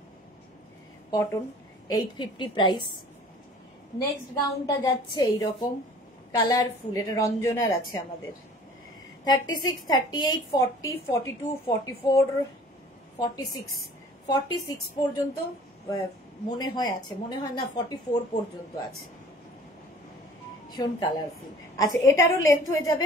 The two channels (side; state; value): both; normal; correlation 0.49